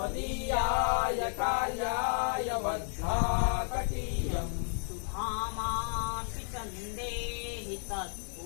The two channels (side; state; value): right; silent; 56 dB below the other